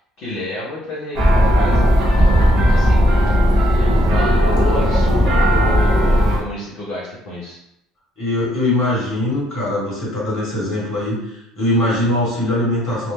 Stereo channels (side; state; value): both; normal; correlation 0.72